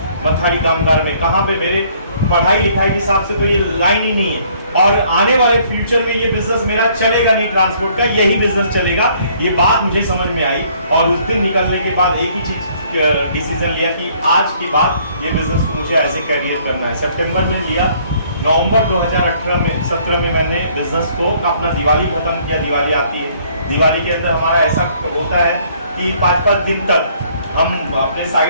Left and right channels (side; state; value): both; inverted; correlation -0.62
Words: मथाड़ी कामगार में, कहाँ पे मेरे पढ़ाई लिखाई के हिसाब से तो ये लाइन ही नहीं है। और आने वाले फ्यूचर में ये बिजनेस मेरा चलेगा नहीं, ट्रांसपोर्ट का यही बिजनेस चलेगा। ये बात मुझे समझ में आई और उस दिन निकलने के बाद एक ही चीज डिसीजन लिया कि आज के बाद ये बिजनेस को मुझे एज ए करियर करना है। सितंबर में लिया, नवंबर 2017 में मैंने बिजनेस को अपना दिवाली खत्म किया। दिवाली आती है, दिवाली के अंदर हमारा ऐसा होता है कि 5-5 दिन तक हम अपने